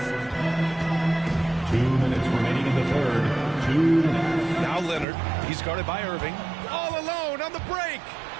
2 minutes remaining in the third. 2 minutes. Now Leonard. He's guarded by Irving. All alone on the break.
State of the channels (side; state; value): left; drops out; at 5.1 s